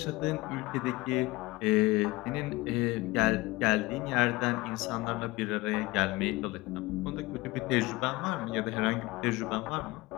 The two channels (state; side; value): quieter; right; 21.1 dB